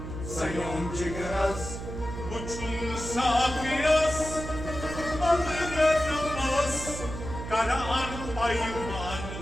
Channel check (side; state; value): right; noise; hum, 8 dB below the sound